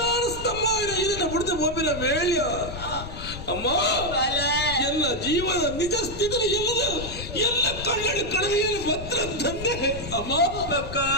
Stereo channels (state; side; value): noise; left; rumble, 10 dB below the sound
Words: ಸ್ತಂಭ ಇದನ್ನ ಬಿಡದೆ ಒಬ್ಬಿನ ವೇಳ್ಯ ಅಮ್ಮ ಎಲ್ಲ ಜೀವನ ನಿಜ ಸ್ಥಿತಿ ಎಲ್ಲ ಕಣ್ಣಲ್ಲಿ ಕಡವೆಯಲ್ಲಿ ಭದ್ರ ತಂದೆ ಅಮ್ಮ